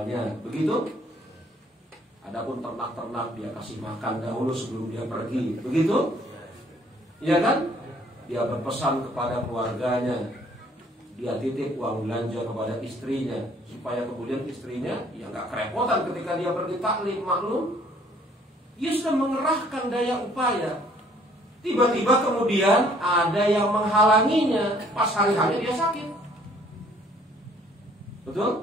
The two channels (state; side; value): normal; both; correlation 0.60